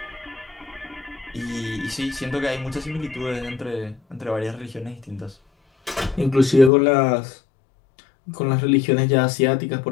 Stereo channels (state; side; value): drops out; right; at 6.7 s